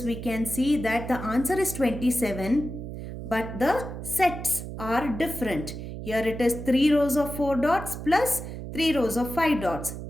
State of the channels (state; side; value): noise; right; hum, 9 dB below the sound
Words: we can see that the answer is 27, but the sets are different. Here it is 3 rows of 4 dots plus 3 rows of 5 dots.